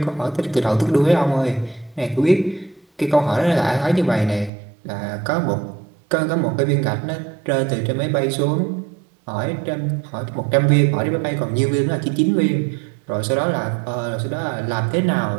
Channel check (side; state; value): left; drops out; at 4.5 s